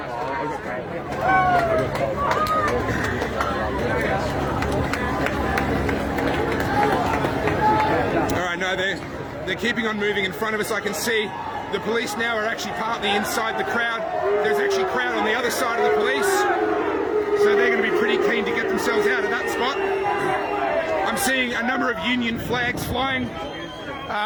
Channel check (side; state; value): both; identical; correlation 1.00